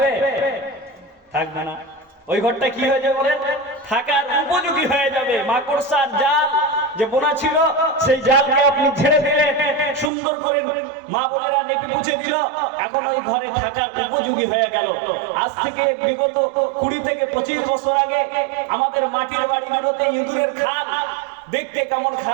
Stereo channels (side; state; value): left; drops out; at 10.1 s